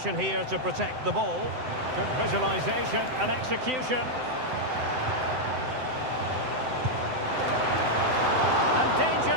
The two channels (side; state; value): left; late; 7.8 ms